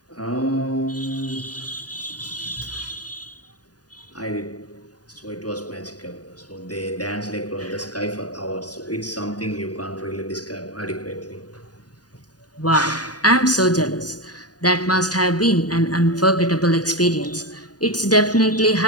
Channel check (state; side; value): late; right; 0.68 ms